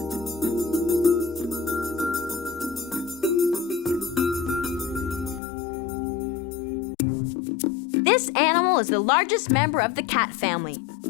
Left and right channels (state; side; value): drops out; right; at 5.4 s